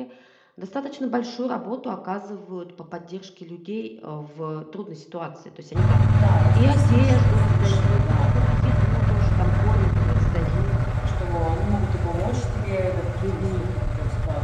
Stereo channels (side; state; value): both; identical; correlation 1.00